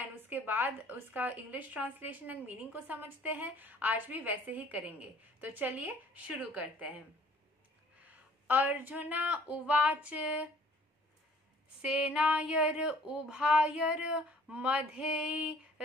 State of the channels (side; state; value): both; normal; correlation 0.56